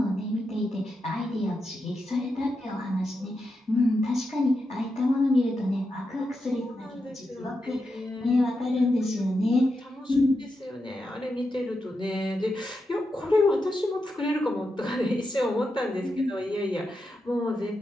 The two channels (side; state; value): both; normal; correlation 0.87